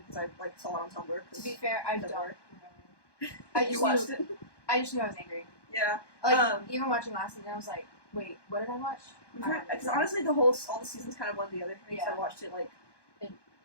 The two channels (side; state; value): right; late; 1.2 ms